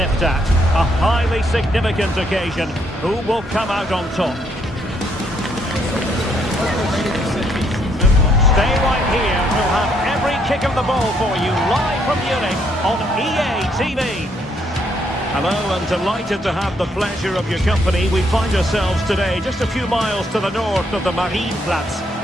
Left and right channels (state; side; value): normal; both; correlation 0.71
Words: at. A highly significant occasion. Who will come out on top? Stay right here. We'll have every kick of the ball for you live from Munich on EA TV. Hello, and delighted to have the pleasure of your company. We find ourselves today just a few miles to the north of the Marienplatz